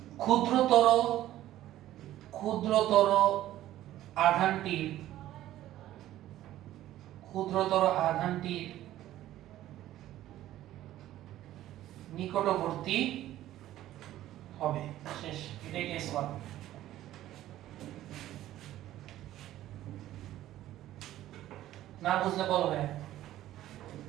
ক্ষুদ্রতর আধানটির নিকটবর্তী হবে। শেষ, এটাই কেস 1। না বুঝলে বলো ভাই।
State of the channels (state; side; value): quieter; left; 13.8 dB